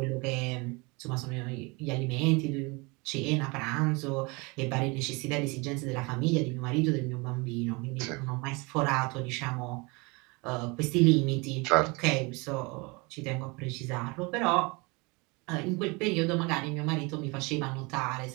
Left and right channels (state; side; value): quieter; left; 27.4 dB